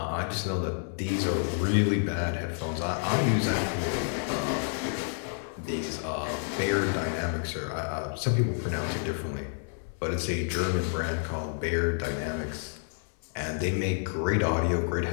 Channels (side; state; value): right; silent; 58 dB below the other